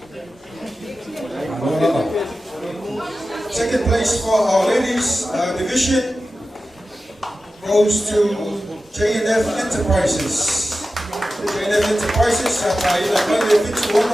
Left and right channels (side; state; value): both; normal; correlation 0.94